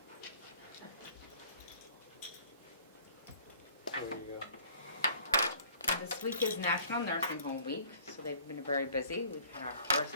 There you go. this week is National Nursing Home Week, so they've been very busy. We've had our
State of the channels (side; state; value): both; inverted; correlation -0.53